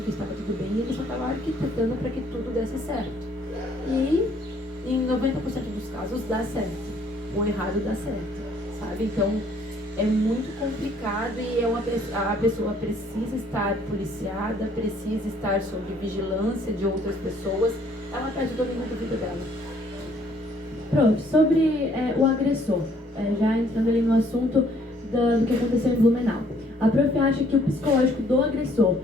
que estava tudo bem e ele só tava arquitetando para que tudo desse certo. E em 90% dos casos dá certo. O errado dá certo, sabe? Então é muito complicado e a pessoa precisa estar policiada, precisa estar sob vigilância de outras pessoas. Ela perde o domínio da vida dela. Prof, sobre o agressor, já entrando ali no assunto do que aconteceu em Blumenau. A Prof acha que o psicológico do agressor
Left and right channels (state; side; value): normal; both; correlation 0.63